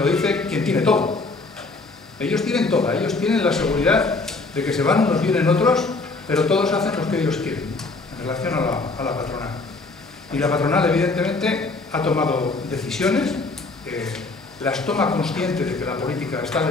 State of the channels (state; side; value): quieter; right; 3.6 dB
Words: dice quien tiene todo. Ellos tienen todo, ellos tienen la seguridad de que se van unos, vienen otros, pero todos hacen lo que ellos quieren en relación a la patronal. Y la patronal, evidentemente, ha tomado decisiones, las toma consciente de que la política está